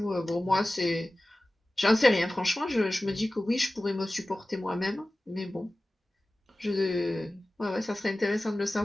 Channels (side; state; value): both; normal; correlation 0.96